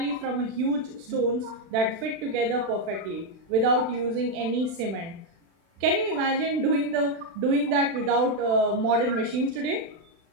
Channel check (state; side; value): late; left; 36 ms